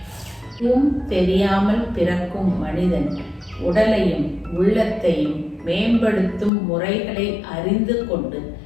தெரியாமல் பிறக்கும் மனிதன் உடலையும் உள்ளத்தையும் மேம்படுத்தும் முறைகளை அறிந்து கொண்டு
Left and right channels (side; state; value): right; drops out; at 6.5 s